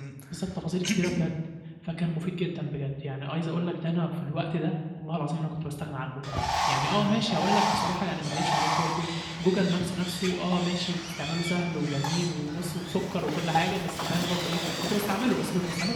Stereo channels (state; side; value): identical; both; correlation 1.00